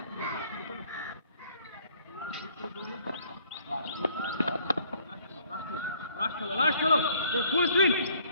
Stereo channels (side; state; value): both; inverted; correlation -0.60